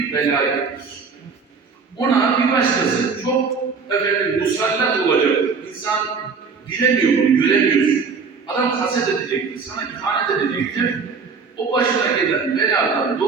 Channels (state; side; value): quieter; left; 5.2 dB